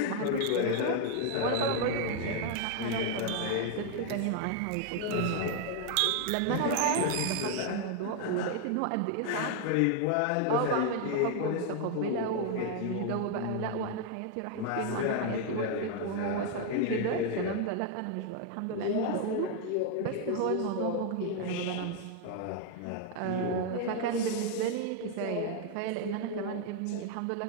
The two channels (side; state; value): both; different; correlation 0.00